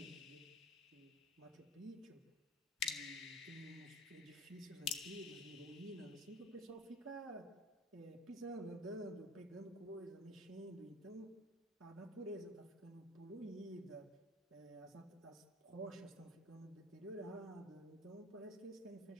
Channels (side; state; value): both; normal; correlation 0.41